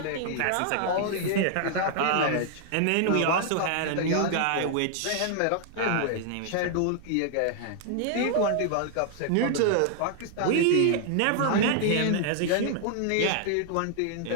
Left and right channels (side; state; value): both; different; correlation 0.00